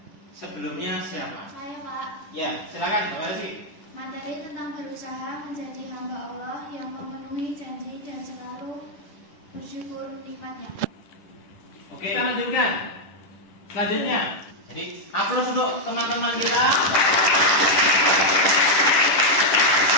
sebelumnya siapa? Saya Pak. Ya, silakan. Terima kasih. Materi tentang berusaha menjadi hamba Allah yang memenuhi janji dan selalu bersyukur nikmatnya. Oke, kita lanjutkan. Selanjutnya, jadi aplaus untuk teman-teman kita.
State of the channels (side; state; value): right; late; 10 ms